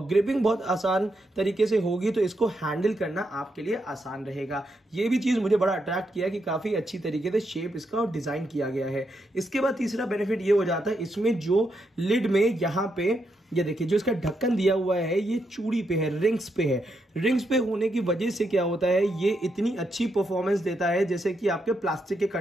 ग्रिपिंग बहुत आसान तरीके से होगी तो इसको हैंडल करना आपके लिए आसान रहेगा। यह भी चीज मुझे बड़ा अट्रैक्ट किया कि काफी अच्छी तरीके से शेप इसका डिजाइन किया गया है। इसके बाद तीसरा बेनिफिट ये हो जाता है, इसमें जो लिड में यहां पे ये देखिए जो इसका ढक्कन दिया हुआ है ये चूड़ी पे है, रिंग्स पे है। रिंग्स पे होने की वजह से क्या होता है, ये इतनी अच्छी परफॉर्मेंस देता है जैसे कि आपके प्लास्टिक के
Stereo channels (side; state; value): both; normal; correlation 0.81